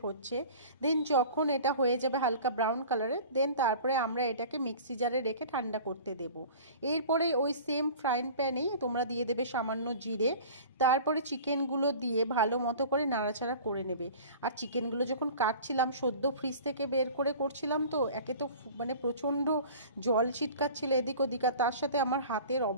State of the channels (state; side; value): inverted; both; correlation -0.42